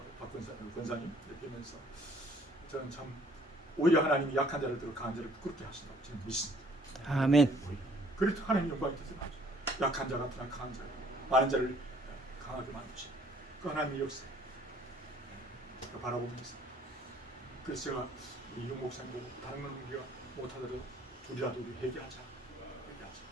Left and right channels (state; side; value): normal; both; correlation 0.59